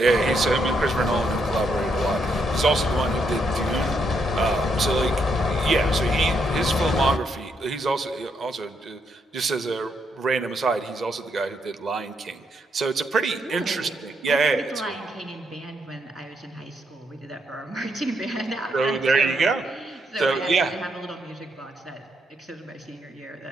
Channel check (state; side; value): normal; both; correlation 0.77